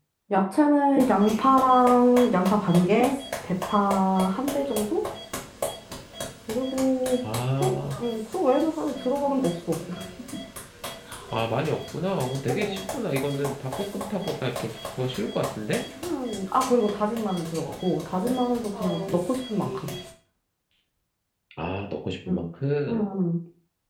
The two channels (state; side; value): identical; both; correlation 1.00